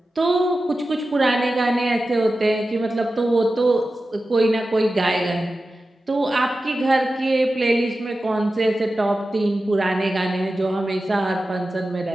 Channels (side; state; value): both; normal; correlation 0.93